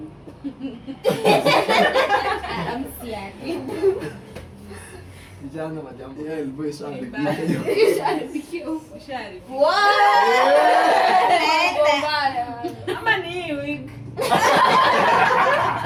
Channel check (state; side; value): identical; both; correlation 1.00